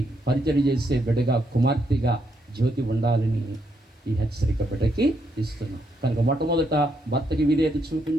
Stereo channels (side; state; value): both; normal; correlation 0.77